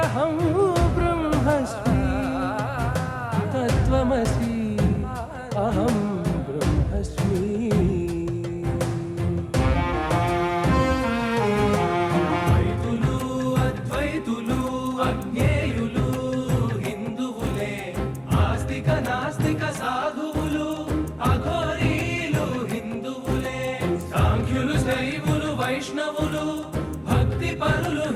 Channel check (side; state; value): both; identical; correlation 1.00